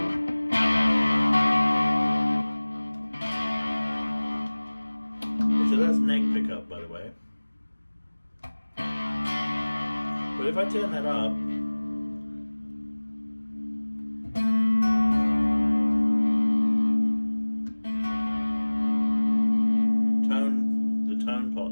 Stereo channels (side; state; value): both; inverted; correlation -1.00